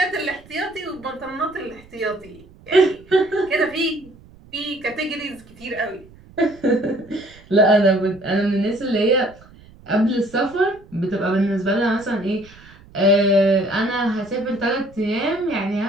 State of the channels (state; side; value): noise; right; rumble, 24 dB below the sound